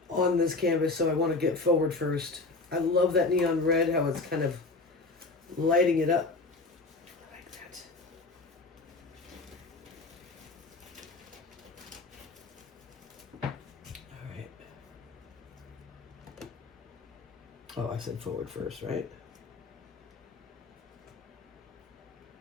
on this canvas, so I want to get forward first. I love that neon red, how it's kind of lighting it up. I like that. All right. Oh, I said forward first, right?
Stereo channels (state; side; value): quieter; right; 3.5 dB